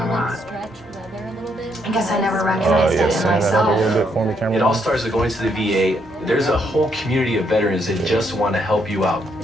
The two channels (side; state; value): both; normal; correlation 0.74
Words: lot. I guess I never recognized Yeah, it in send that up a myself. little bit for me, It camera. all starts with going to the VA. There's a whole community of veterans that just want to help you out.